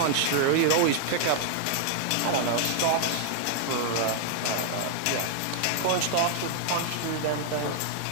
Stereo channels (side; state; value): both; different; correlation 0.00